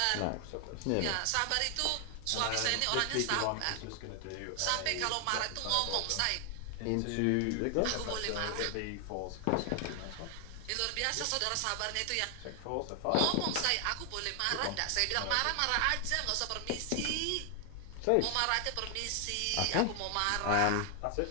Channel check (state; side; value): different; both; correlation 0.00